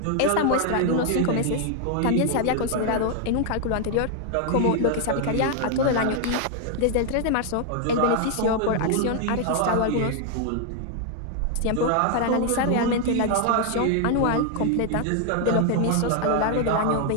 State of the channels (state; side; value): different; both; correlation 0.00